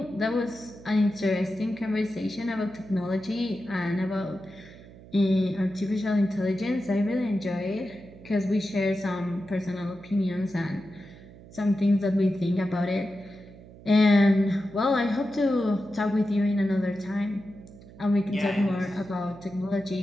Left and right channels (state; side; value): noise; right; hum, 19 dB below the sound